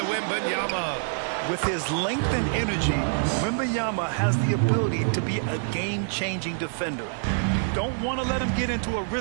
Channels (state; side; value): silent; left; 55 dB below the other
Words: Wembanyama. With his length and energy, Wembanyama has the ability to be a game-changing defender. You don't want to let him get into a